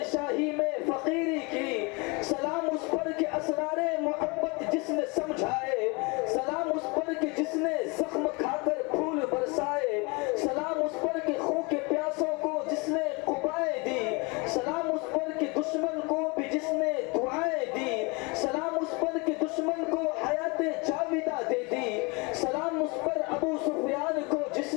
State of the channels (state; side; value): quieter; right; 28.6 dB